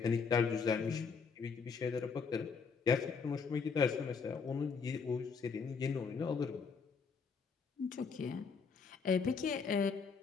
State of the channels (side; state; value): right; quieter; 5.4 dB